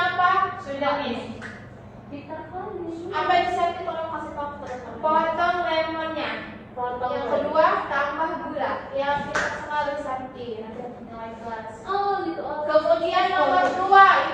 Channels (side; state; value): both; identical; correlation 1.00